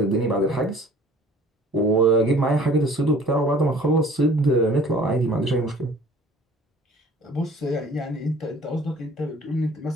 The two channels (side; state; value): both; normal; correlation 0.50